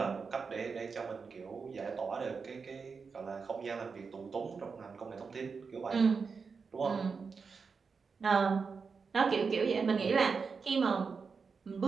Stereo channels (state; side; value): quieter; left; 5.2 dB